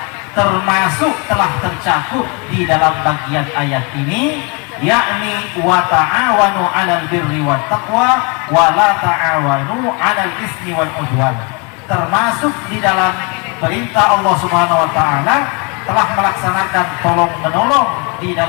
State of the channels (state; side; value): quieter; right; 30.6 dB